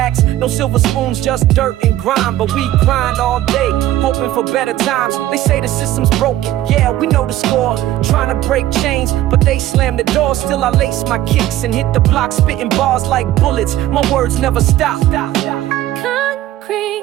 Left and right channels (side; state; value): left; quieter; 14.0 dB